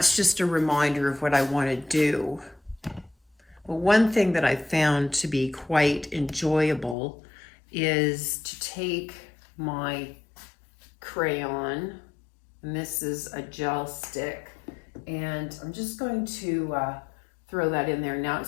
just a reminder of what I want to do. Well, one thing that I found to be quite enjoyable is to take my crayon, and this is a gel stick, and I'm just going to throw that in there. Now,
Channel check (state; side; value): drops out; right; at 7.0 s